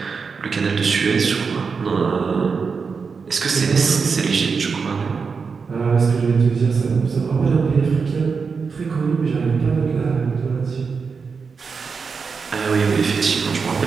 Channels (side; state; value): left; quieter; 5.3 dB